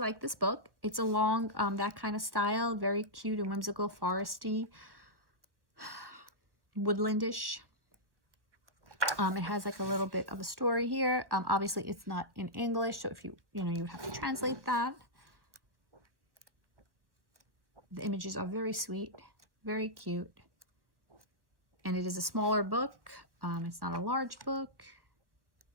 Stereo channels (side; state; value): left; late; 1.0 ms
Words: this book. It's along that kind of style, very cute and whimsical, foresty, woodlandish. It has like a little bit of a story here. Obviously it's not in English, so if you have to translate that. The images are very sweet, very cute, and it is a smaller book. It's not a large book,